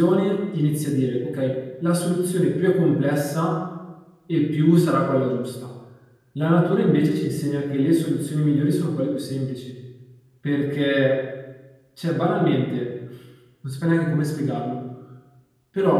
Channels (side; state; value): both; identical; correlation 1.00